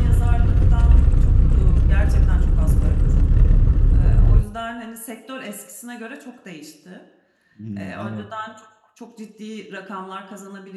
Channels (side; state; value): both; identical; correlation 1.00